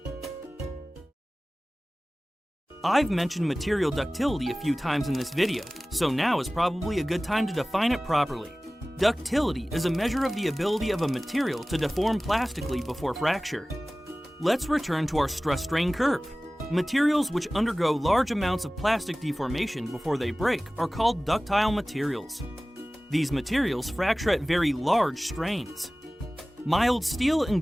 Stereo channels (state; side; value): normal; both; correlation 0.98